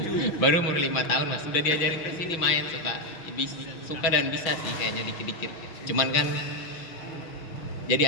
Baru umur 5 tahun mas, sudah diajarin ke sini main suka dan bisa sih kayaknya dikit-dikit. Cuman kan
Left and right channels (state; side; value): late; right; 6.0 ms